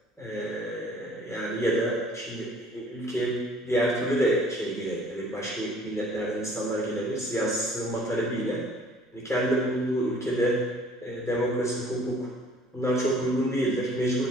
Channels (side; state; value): both; normal; correlation 0.54